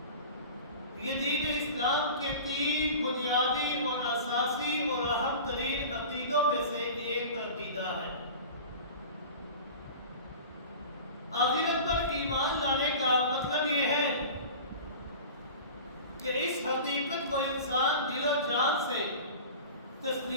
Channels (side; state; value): both; inverted; correlation -0.37